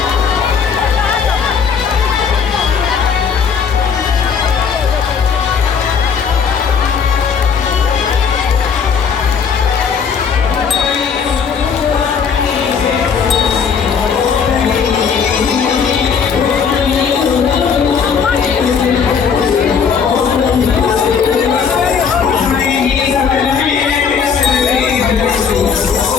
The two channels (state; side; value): quieter; right; 6.5 dB